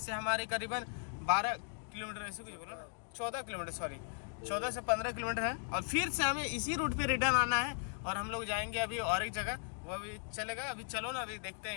हमारे करीबन 12 किलोमीटर, ऐसे कुछ बोला ना, 14 किलोमीटर, सॉरी 14 से 15 किलोमीटर है। और फिर से हमें इसी रूट पे रिटर्न आना है और हम लोग जाएंगे अभी और एक जगह, वो अभी चलेगा। अभी चलो ना, अभी देखते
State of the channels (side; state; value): right; silent; 53 dB below the other